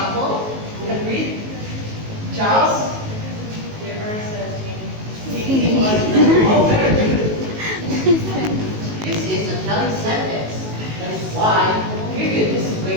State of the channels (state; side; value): late; left; 19 ms